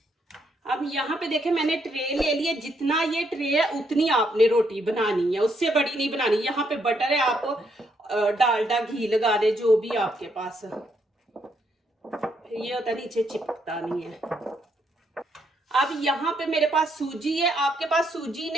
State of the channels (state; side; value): normal; both; correlation 0.75